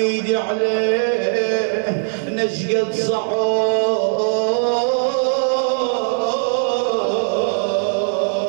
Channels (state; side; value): silent; left; 64 dB below the other